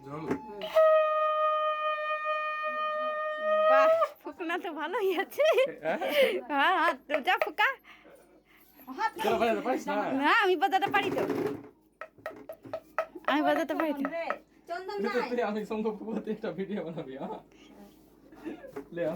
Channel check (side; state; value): both; identical; correlation 1.00